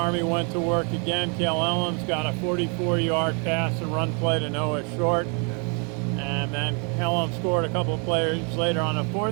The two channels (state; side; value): quieter; left; 36.4 dB